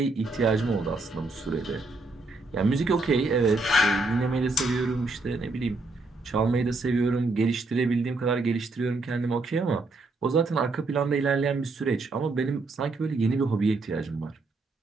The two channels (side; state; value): left; quieter; 3.3 dB